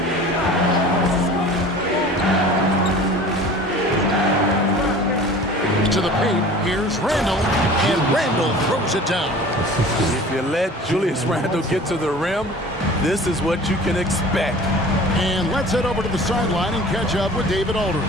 To the paint, here's Randall, and Randall throws it down. If you let Julius Randle get to the rim, this is what you can expect. And let's head over to the sideline and catch up with David Aldridge.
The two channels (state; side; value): normal; both; correlation 0.43